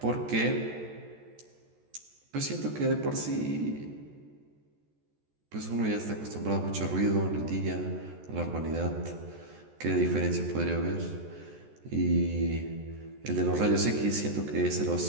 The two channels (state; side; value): late; left; 14 ms